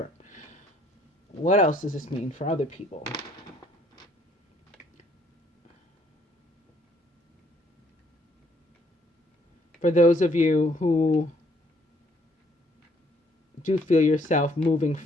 What else does this mean for other people? For those of you who do feel yourself moving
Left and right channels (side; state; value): both; normal; correlation 0.65